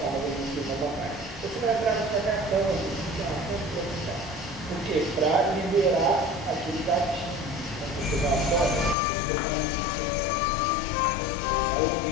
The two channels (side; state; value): right; drops out; at 9.0 s